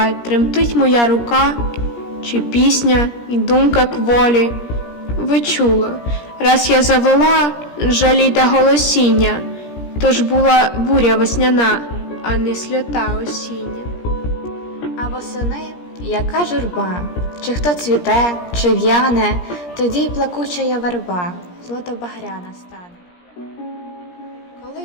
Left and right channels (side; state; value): right; late; 17 ms